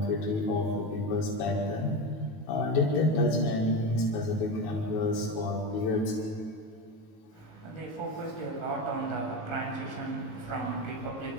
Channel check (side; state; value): right; late; 19 ms